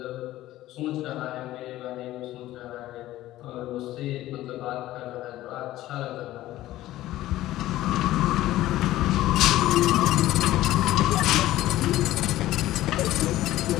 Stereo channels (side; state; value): right; quieter; 15.2 dB